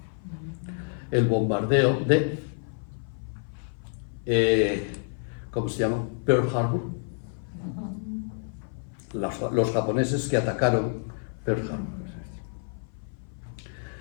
el bombardeo de, ¿cómo se llama? Pearl Harbor. Los japoneses que atacaron Pearl Harbor.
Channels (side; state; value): right; silent; 56 dB below the other